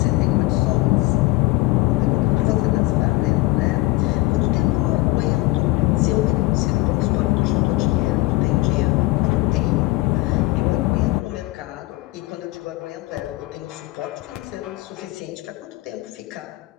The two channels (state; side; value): quieter; right; 20.0 dB